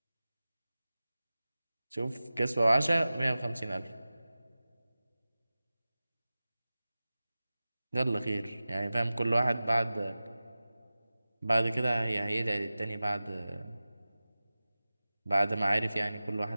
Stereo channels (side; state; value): both; inverted; correlation -0.97